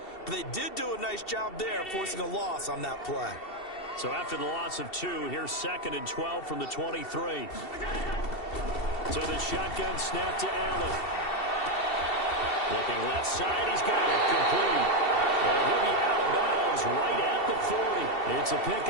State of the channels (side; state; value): right; late; 2.7 ms